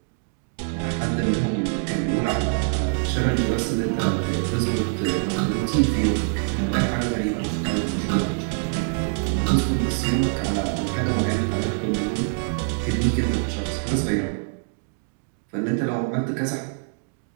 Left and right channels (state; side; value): silent; left; digital silence